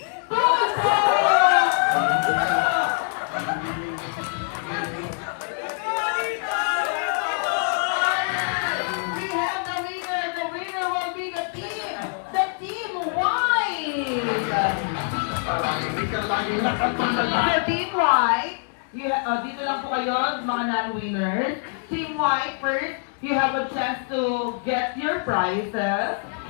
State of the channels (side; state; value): right; silent; 62 dB below the other